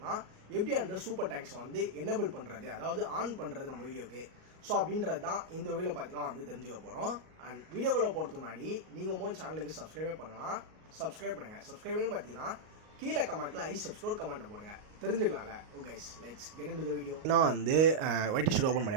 எப்படி அந்த சூப்பர் டேங்க்ஸ் வந்து எனபிள் பண்றது, அதாவது ஆன் பண்றது நம்ம வீடியோக்கு. ஸோ அப்படின்றது தான் இந்த வீடியோவில் பார்த்தீங்கன்னா வந்து தெரிஞ்சுக்க போகிறோம். அண்ட் வீடியோக்குள்ளே போகிறதுக்கு முன்னாடி நீங்கள் சேனலுக்கு சப்ஸ்கிரைபே பண்ணலாம். சப்ஸ்கிரைப் பண்ணுங்க. சப்ஸ்கிரைபிங் பார்த்தீங்கன்னா கீழே கமெண்ட்ல சப்ஸ்கிரைப் கமெண்ட் போடுங்க, தெரிஞ்சுக்கலாம்ல. Okay let's get into the video. நான் வந்து ஒய்டி ஸ்டுடியோ ஓப்பன்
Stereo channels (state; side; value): late; left; 38 ms